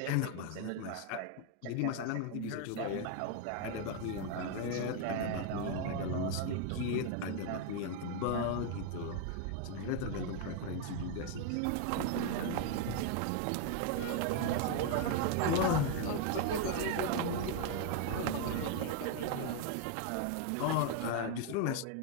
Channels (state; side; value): different; both; correlation 0.00